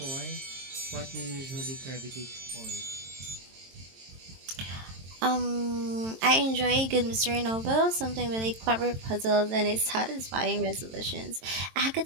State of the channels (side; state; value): left; late; 22 ms